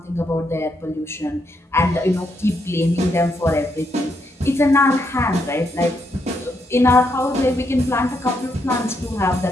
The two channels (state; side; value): normal; both; correlation 0.78